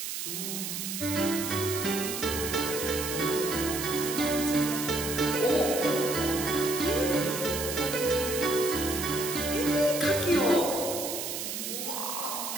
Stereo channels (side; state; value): right; noise; hiss, 4 dB below the sound